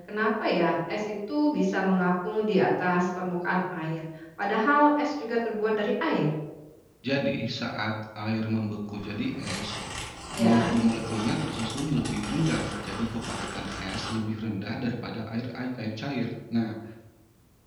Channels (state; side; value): identical; both; correlation 1.00